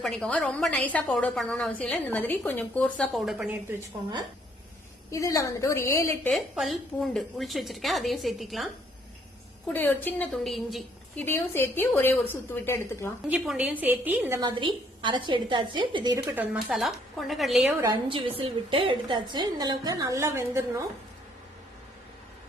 பண்ணிக்கோங்க. ரொம்ப நைஸா பவுடர் பண்ணணும்னு அவசியம் இல்லை. இந்த மாதிரி கொஞ்சம் கோர்ஸா பவுடர் பண்ணி எடுத்து வச்சுக்கோங்க. இதுல வந்துட்டு ஒரு 7-8 பல் பூண்டு உளிச்சு வச்சிருக்கேன், அதையும் சேர்த்திக்கலாம். கூட ஒரு சின்ன துண்டு இஞ்சி, இதையும் சேர்த்து ஒரே ஒரு சுத்து விட்டு எடுத்துக்கலாம். இஞ்சி பூண்டையும் சேர்த்து இந்த மாதிரி அரைச்சு எடுத்தாச்சு. இது இருக்கட்டும். மசாலா கொண்டக்கடலையே ஒரு 5 விசில் விட்டு எடுத்தாச்சு. இந்த அளவுக்கு நல்லா வெந்துடணும்.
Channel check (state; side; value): normal; both; correlation 0.66